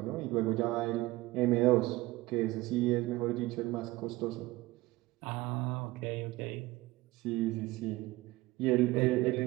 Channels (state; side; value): quieter; left; 19.5 dB